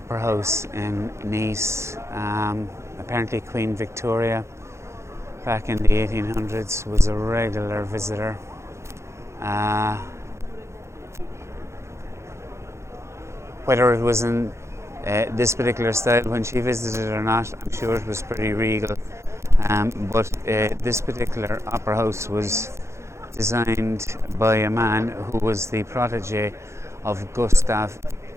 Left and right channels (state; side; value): late; left; 0.13 ms